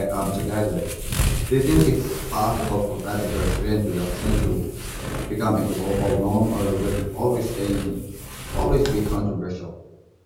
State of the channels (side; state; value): both; identical; correlation 1.00